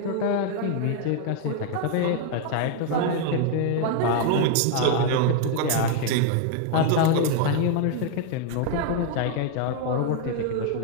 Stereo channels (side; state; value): both; different; correlation 0.00